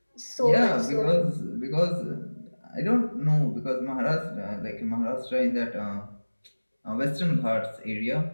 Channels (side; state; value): both; inverted; correlation -1.00